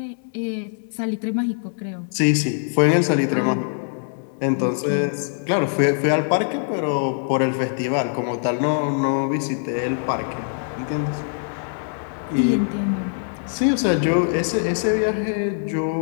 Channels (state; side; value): silent; right; digital silence